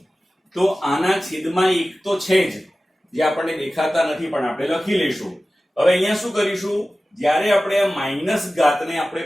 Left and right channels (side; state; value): both; normal; correlation 0.96